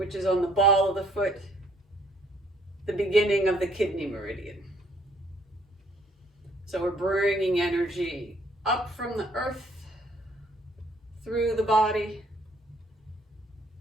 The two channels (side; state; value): both; normal; correlation 0.64